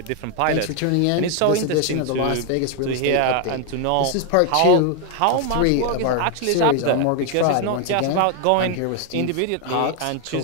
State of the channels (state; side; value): different; both; correlation 0.00